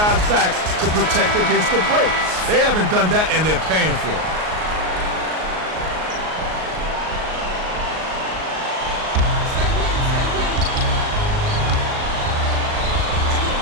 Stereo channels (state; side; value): late; left; 38 ms